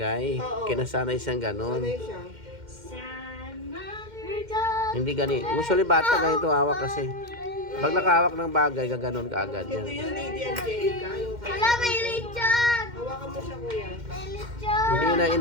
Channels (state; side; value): late; left; 2.1 ms